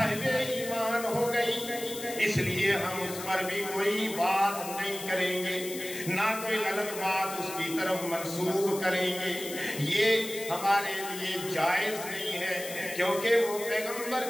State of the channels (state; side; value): noise; left; hiss, 10 dB below the sound